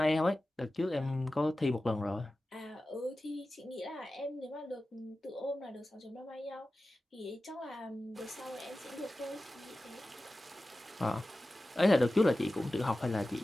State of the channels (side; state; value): both; normal; correlation 0.95